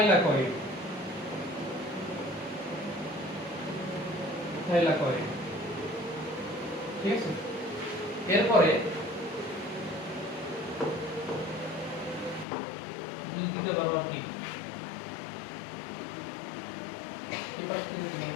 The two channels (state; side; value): drops out; right; at 12.5 s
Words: থাইলাকয়েড, ঠিক আছে। এরপরে যদি দিতে পারো আর কি এবার কি দিতে